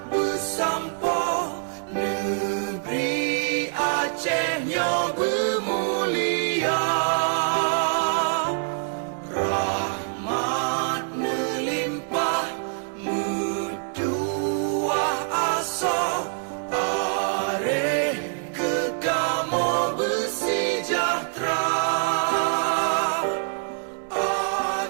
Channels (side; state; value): left; silent; 62 dB below the other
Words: bersampo, negeri Acehnya bermulia. Rahmat melimpah, metuah aso, are kekamo bersejahtera.